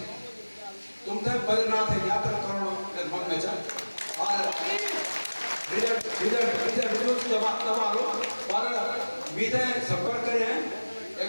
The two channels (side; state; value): both; inverted; correlation -1.00